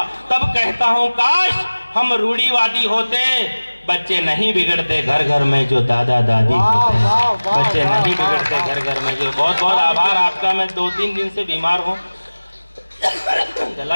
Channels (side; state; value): both; inverted; correlation -1.00